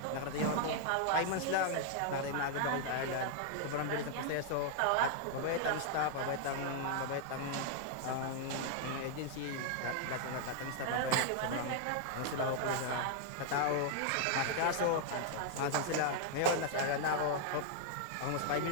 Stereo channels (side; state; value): both; different; correlation 0.00